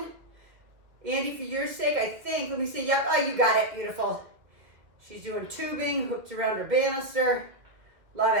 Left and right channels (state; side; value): late; left; 2.3 ms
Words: Andy, for your sake, I think, let me see, yep, oh, you got it, beautiful. She's doing tubing, hooked around her banister. Love